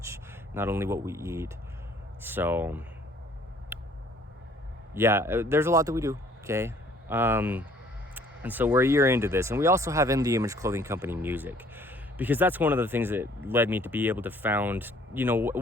not only what we eat. So yeah, there's a lot that we do, okay? And so we're a year into this, and we also have In the Image Clothing Company music, because that's one of the things that led me to be able to found, you know,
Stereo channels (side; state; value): both; normal; correlation 0.58